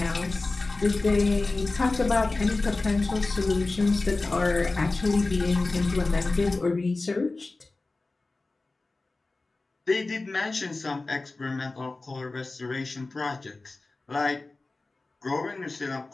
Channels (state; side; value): quieter; right; 3.3 dB